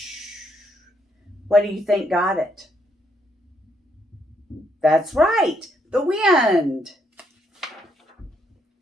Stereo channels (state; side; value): normal; both; correlation 0.74